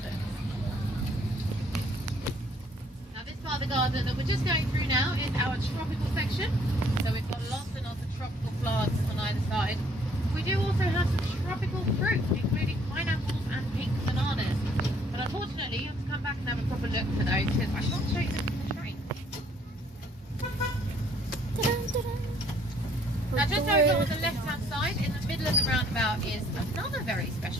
Now this part of the garden that we're just going through now is our tropical section, so we've got lots and lots of tropical plants on either side. We do also have some tropical fruit, including pineapples and pink bananas. But unfortunately, you have to come back and have a proper look for those because I can't show you them from the train. Now just over on the left-hand side, in the middle of the roundabout, is another very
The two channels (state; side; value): normal; both; correlation 0.63